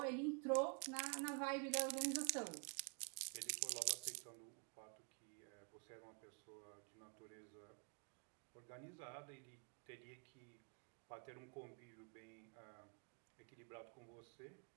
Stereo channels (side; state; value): left; quieter; 38.7 dB